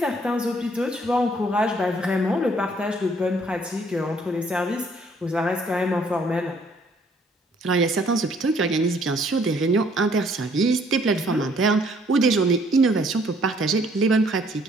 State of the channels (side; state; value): both; normal; correlation 0.63